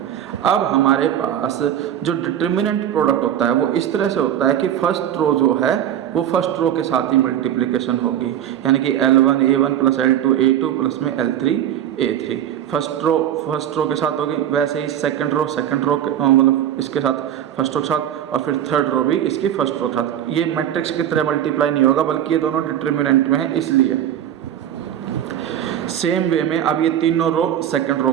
अब हमारे पास जो डिटर्मिनेंट प्रोडक्ट होता है वो इस तरह से होता है कि फर्स्ट रो जो है वो फर्स्ट रो के साथ ही मल्टीप्लिकेशन होगी, यानी कि L1 A1 plus L2 A2 plus में L3 A3। फर्स्ट रो के साथ होगी। वैसे ही सेकंड रो मतलब इसके साथ फर्स्ट रो के साथ, और फिर थर्ड रो भी इसकी फर्स्ट रो के साथ। ये मैट्रिक्स की तरह मल्टीप्लाई नहीं होगा बल्कि ये दोनों डिटर्मिनेंट में है इसलिए। सेम वे में अब ये तीनों रो सेकंड रो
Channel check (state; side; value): quieter; left; 10.6 dB